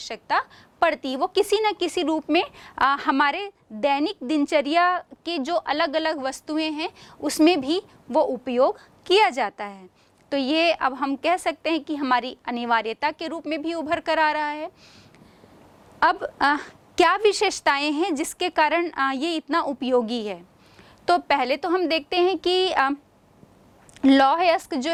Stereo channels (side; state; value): both; identical; correlation 1.00